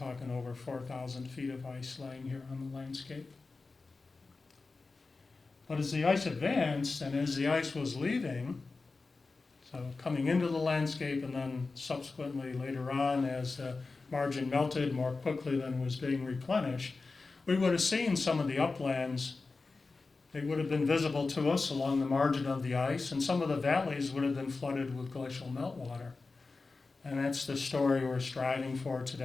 over 4,000 feet of ice laying here on the landscape. But as the ice advanced and as the ice was leaving, so coming into the landscape and then subsequently later on as the margin melted more quickly than was being replenished, we would have seen some of the uplands. They would have been visible to us along the margin of the ice, and some of the valleys would have been flooded with glacial meltwater. And that's the story we're striving for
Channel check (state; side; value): quieter; right; 3.9 dB